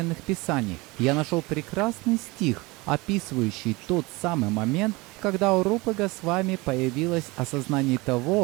писаний. Я нашел прекрасный стих, описывающий тот самый момент, когда у Рупы Госвами появилось осознание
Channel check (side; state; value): left; quieter; 23.7 dB